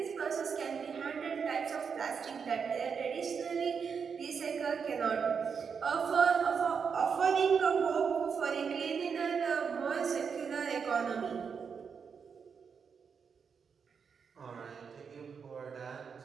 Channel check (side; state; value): left; quieter; 6.2 dB